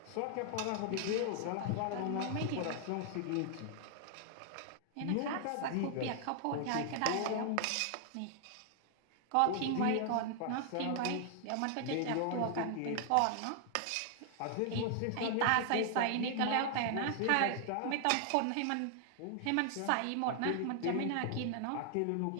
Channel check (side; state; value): both; different; correlation 0.00